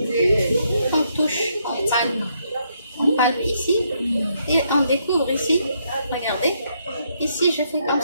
On touche, on palpe ici et on découvre ici. Regardez, ici je fais comme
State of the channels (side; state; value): both; inverted; correlation -0.75